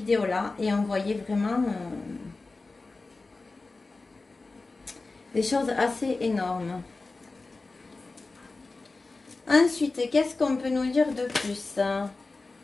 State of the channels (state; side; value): quieter; right; 3.6 dB